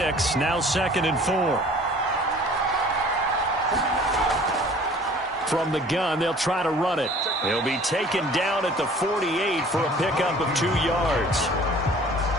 now 2nd and 4. From the gun, they'll try to run it. He'll be taken down at the 48 for a pickup of 2 yards.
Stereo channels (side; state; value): both; normal; correlation 0.49